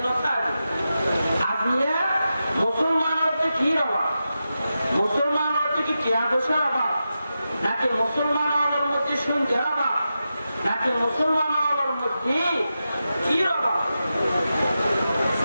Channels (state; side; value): inverted; both; correlation -0.90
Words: নটাইব আজকে মুসলমানের কি অভাব মুসলমানের কি টিয়াবসের অভাব নাকি মুসলমানের মধ্যে শুনতে অভাব নাকি মুসলমানের মধ্যে কি অভাব